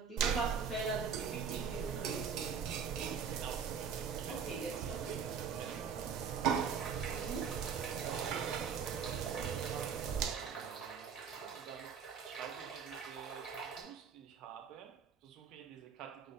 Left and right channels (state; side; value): quieter; left; 6.7 dB